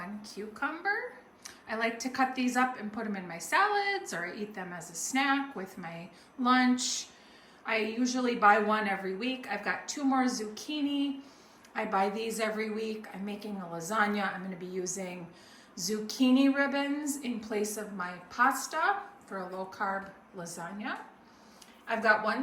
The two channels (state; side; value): identical; both; correlation 1.00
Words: cucumber. I like to cut these up and put them in my salads, or I eat them as a snack with my lunch. I usually buy one every week. I've got two more zucchini. I buy these every week. I'm making a lasagna. I'm going to be using zucchini ribbons in place of my pasta for a low-carb lasagna. I've got one